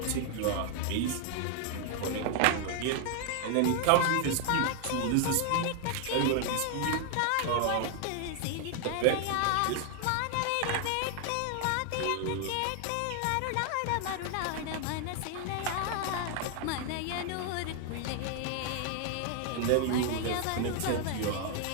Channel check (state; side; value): different; both; correlation 0.00